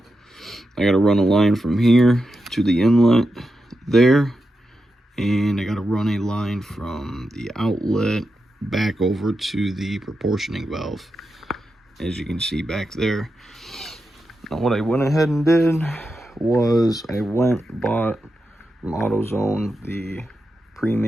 I got to run a line from here to the inlet there. And I got to run a line from the outlet back over to the proportioning valve, as you can see back there. Now what I went ahead and did was I bought from AutoZone the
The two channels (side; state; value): both; normal; correlation 0.88